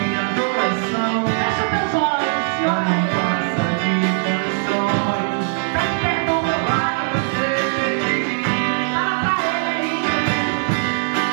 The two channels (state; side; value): silent; left; 57 dB below the other